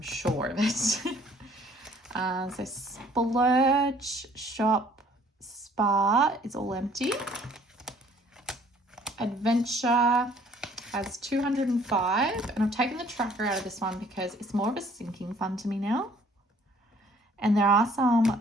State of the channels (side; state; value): both; normal; correlation 0.58